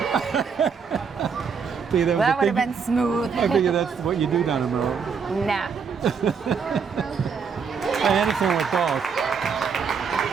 See, That would have been smooth. I figure that's what you do down in Maryland. Nah. Anderson with both.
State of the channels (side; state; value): left; quieter; 6.0 dB